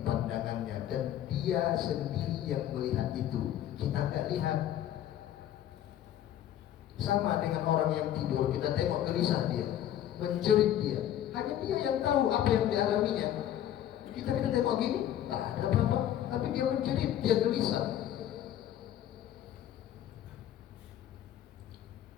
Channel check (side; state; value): right; quieter; 11.4 dB